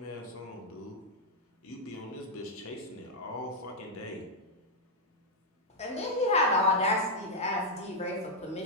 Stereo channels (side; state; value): both; normal; correlation -0.02